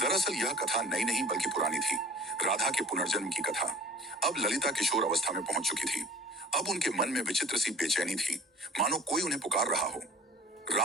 दरअसल यह कथा नई नहीं बल्कि पुरानी थी, राधा के पुनर्जन्म की कथा। अब ललिता किशोर अवस्था में पहुंच चुकी थी। अब उनके मन में विचित्र सी बेचैनी थी, मानो कोई उन्हें पुकार रहा हो।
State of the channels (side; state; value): both; normal; correlation 0.47